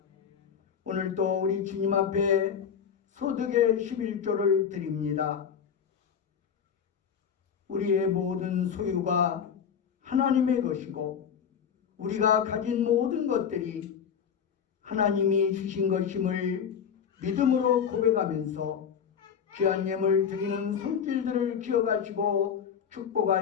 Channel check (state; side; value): quieter; right; 7.6 dB